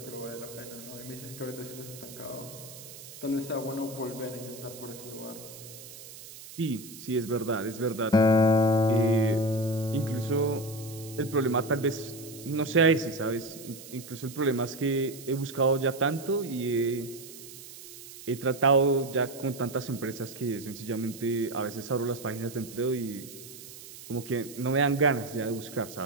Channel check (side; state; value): right; noise; hiss, 15 dB below the sound